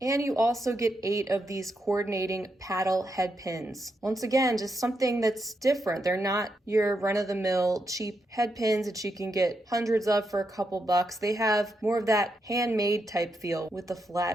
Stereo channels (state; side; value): normal; both; correlation 0.83